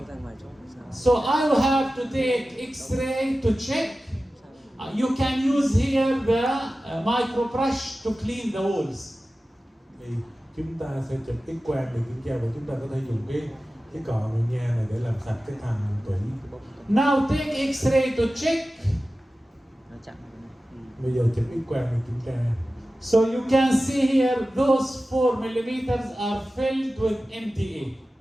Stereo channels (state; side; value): normal; both; correlation 0.95